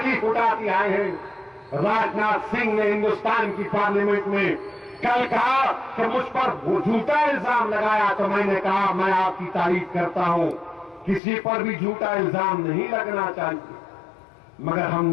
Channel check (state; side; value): drops out; right; at 11.2 s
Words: उठाती आए हैं। राजनाथ सिंह ने हिंदुस्तान की पार्लियामेंट में कल कहा कि मुझ पर वो झूठा इल्जाम लगाया, तो मैंने कहा मैं आपकी तारीफ करता हूं, किसी पर भी झूठा इल्जाम नहीं लगना चाहिए। मगर